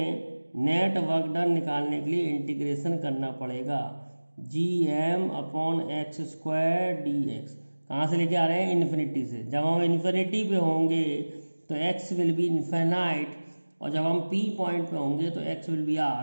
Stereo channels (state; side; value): inverted; both; correlation -1.00